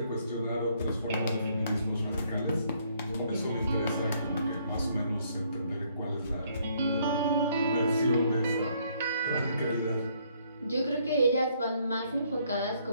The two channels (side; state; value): both; inverted; correlation -0.67